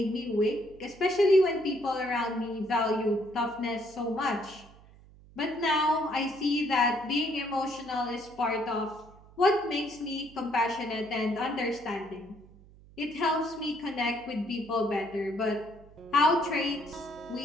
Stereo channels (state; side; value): noise; right; hum, 23 dB below the sound